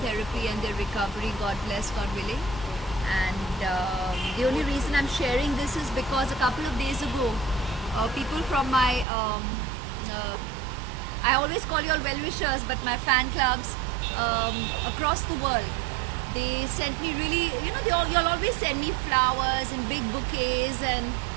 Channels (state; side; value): drops out; left; at 9.1 s